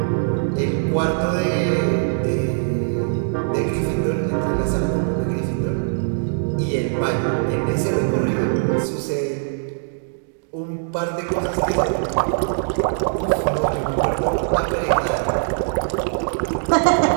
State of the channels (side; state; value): left; silent; digital silence